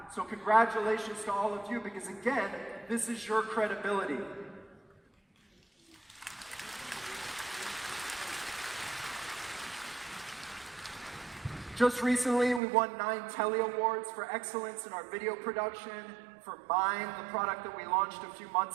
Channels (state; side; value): drops out; left; at 12.6 s